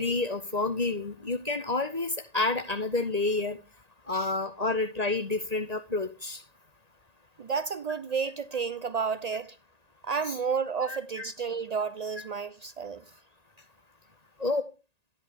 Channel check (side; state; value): left; late; 1.8 ms